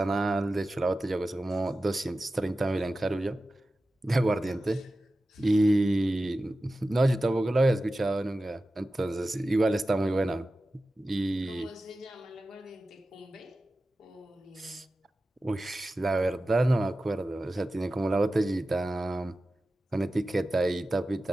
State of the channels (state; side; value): normal; both; correlation 0.94